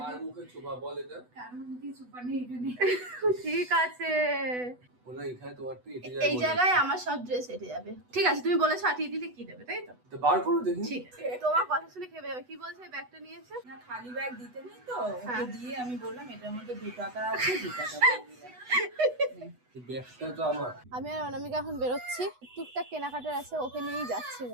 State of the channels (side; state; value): left; late; 8.1 ms